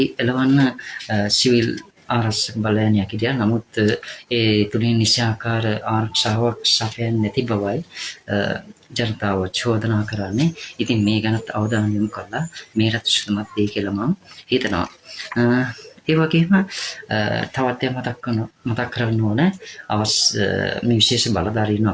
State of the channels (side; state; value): both; identical; correlation 1.00